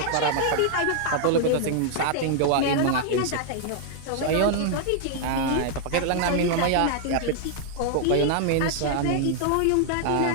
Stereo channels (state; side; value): different; both; correlation 0.00